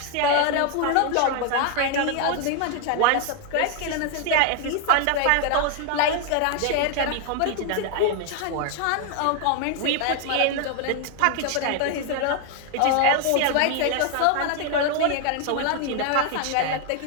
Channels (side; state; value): both; different; correlation 0.00